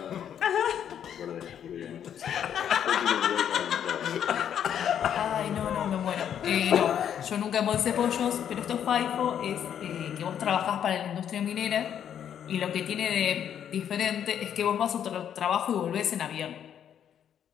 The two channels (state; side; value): quieter; right; 9.2 dB